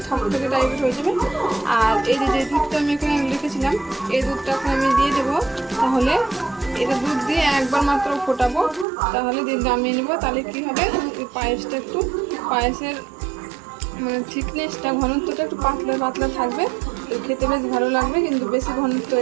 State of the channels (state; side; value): drops out; left; at 8.8 s